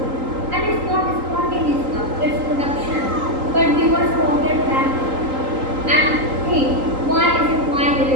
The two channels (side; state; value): left; late; 3.8 ms